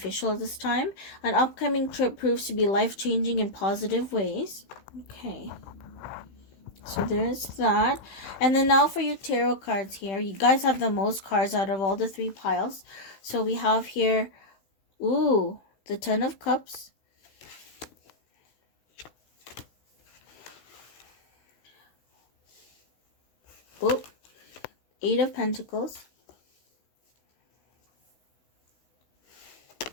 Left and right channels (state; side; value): late; right; 16 ms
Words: at this time. An upcoming trip proves to be life-changing in positive ways. Okay. So there's that. And then now for your tarot cards here. You guys have the most cards out of all the 3 piles. So we have here, ooh, the 10 of Cups. Oh, 8 of Pentacles.